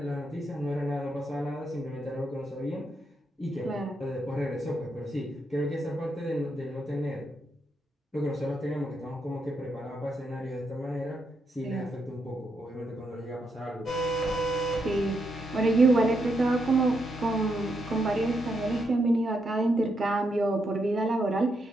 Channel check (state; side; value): normal; both; correlation 0.80